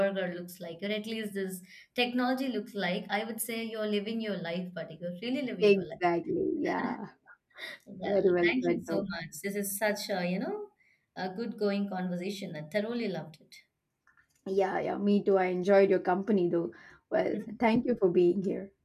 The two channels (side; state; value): both; identical; correlation 1.00